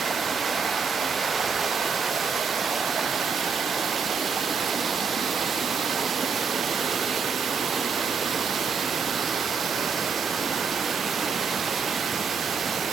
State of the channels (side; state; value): left; quieter; 5.7 dB